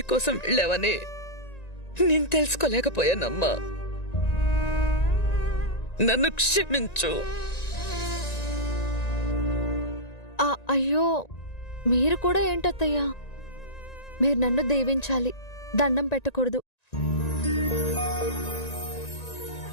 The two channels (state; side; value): late; right; 1.9 ms